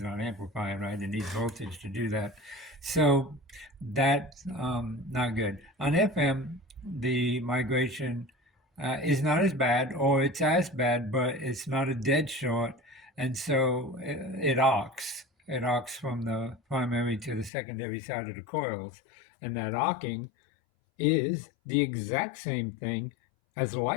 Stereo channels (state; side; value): drops out; right; at 17.5 s